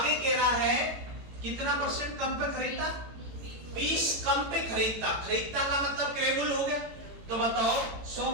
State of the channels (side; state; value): left; late; 18 ms